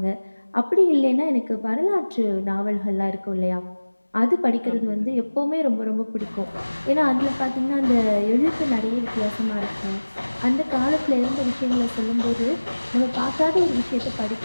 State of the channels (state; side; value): inverted; both; correlation -1.00